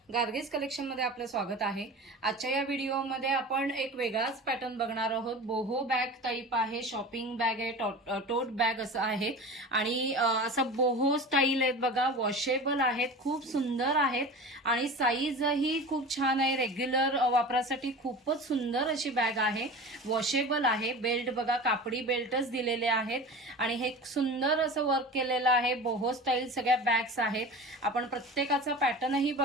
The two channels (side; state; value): both; normal; correlation 0.34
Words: गार्गीज कलेक्शन मध्ये आपलं स्वागत आहे। आजच्या या व्हिडिओमध्ये आपण एक वेगळाच पॅटर्न बघणार आहोत। बोहो बॅग टाइप आहे, शॉपिंग बॅग आहे, टोट बॅग असं आहे आणि असं बोहो स्टाईल आहेत बघा, वॉशेबल आहेत, खूप सुंदर आहेत आणि साईजही खूप छान आहे। रेग्युलर वापरासाठी खूपच सुंदर अशी बॅग आहे, वॉशेबल आहे। बेल्ट बघा, कापडी बेल्टच दिलेले आहेत आणि हे सुंदर असं वर्क केलेलं आहे। बोहो स्टाईल सगळ्या बॅग्स आहेत। आपण प्रत्येकाचा पॅटर्न ही